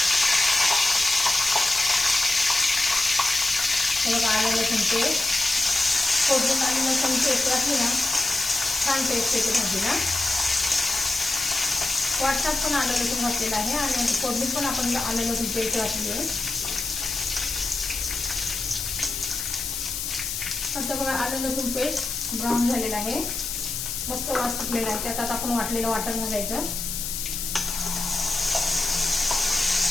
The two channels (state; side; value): noise; left; hiss, 4 dB below the sound